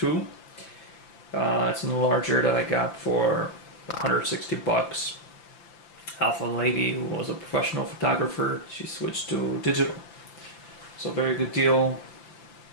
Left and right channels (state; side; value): late; right; 5.8 ms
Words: It's an Enlarger that I got for $160. Off a lady who was a professional photographer. She switched to digital. So very good deal,